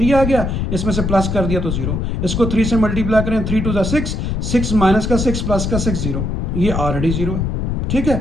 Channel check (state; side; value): noise; left; rumble, 1 dB below the sound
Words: आ गया, इसमें से प्लस कर दिया तो 0। इसको 3 से मल्टीप्लाई करें, 3 2 6, 6 माइनस का 6 प्लस का 6 0, ये ऑलरेडी 0 है, ठीक है।